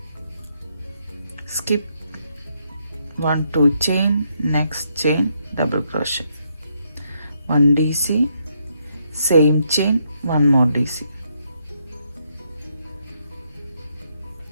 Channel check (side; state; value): both; inverted; correlation -0.76